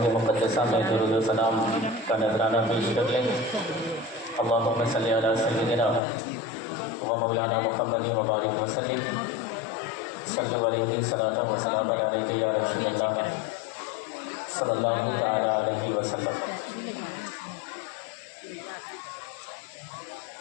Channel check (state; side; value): drops out; right; at 6.0 s